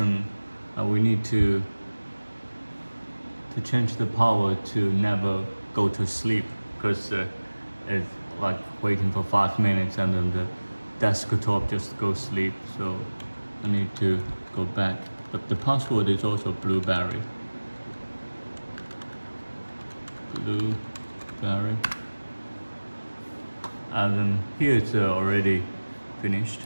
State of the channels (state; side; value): inverted; both; correlation -1.00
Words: we need to change the power to never go to sleep, because it's like waiting for 5 minutes and then the desktop just goes sleep. So I need to go back. But the password is also blueberry. Blueberry. And then here it's already finished.